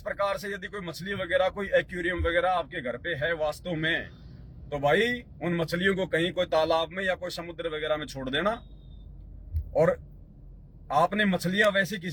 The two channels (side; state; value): both; identical; correlation 1.00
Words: प्रकार से यदि कोई मछली वगैरह, कोई एक्वेरियम वगैरह आपके घर पे है वास्तव में, तो भाई उन मछलियों को कहीं कोई तालाब में या कोई समुद्र वगैरह में छोड़ देना। और आपने मछलियां वैसे